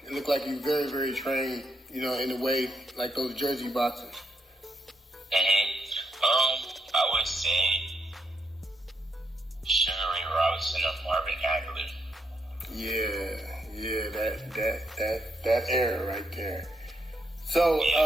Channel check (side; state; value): both; normal; correlation 0.79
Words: look like you very, very trained. You know, in a way like those Jersey boxers. I would say Sugar Ray Robinson or Marvin Hagler. Yeah, that era right there. So,